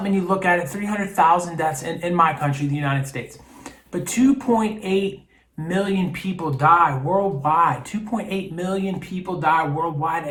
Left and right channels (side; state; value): both; identical; correlation 1.00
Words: and you look at it, 300,000 deaths in my country, the United States. But 2.8 million people die worldwide. 2.8 million people die worldwide